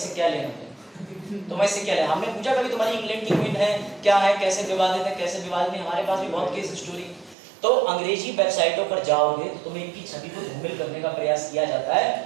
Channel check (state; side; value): drops out; left; at 7.4 s